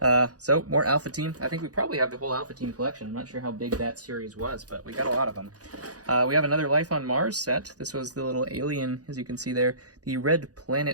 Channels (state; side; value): late; left; 0.67 ms